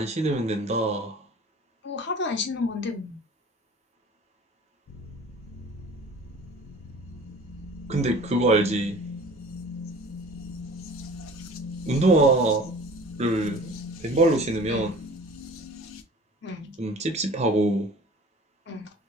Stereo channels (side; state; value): both; normal; correlation 0.44